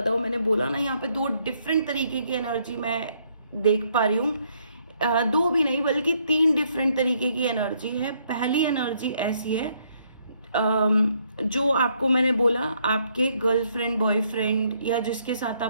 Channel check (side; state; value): both; inverted; correlation -0.71